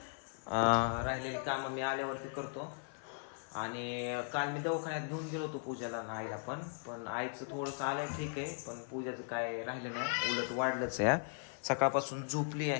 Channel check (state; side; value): silent; right; 53 dB below the other